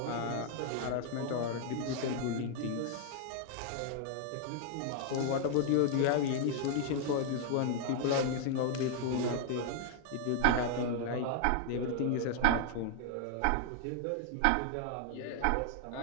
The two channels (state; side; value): different; both; correlation 0.00